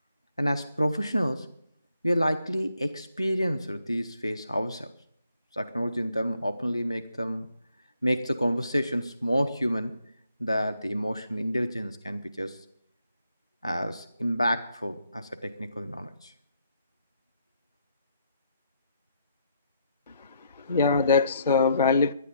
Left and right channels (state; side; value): inverted; both; correlation -0.74